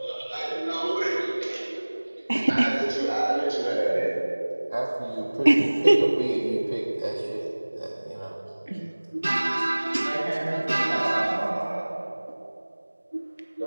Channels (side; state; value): both; inverted; correlation -1.00